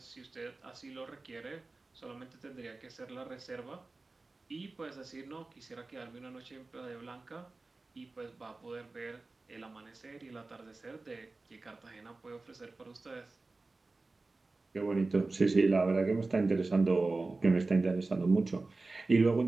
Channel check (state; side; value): quieter; left; 3.4 dB